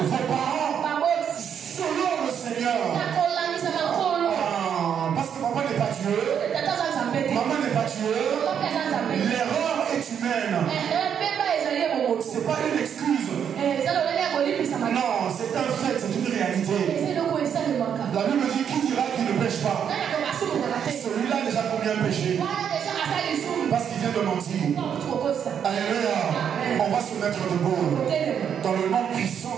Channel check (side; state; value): left; quieter; 8.2 dB